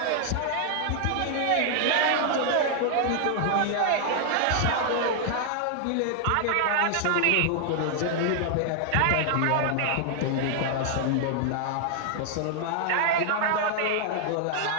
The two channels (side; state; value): both; different; correlation 0.00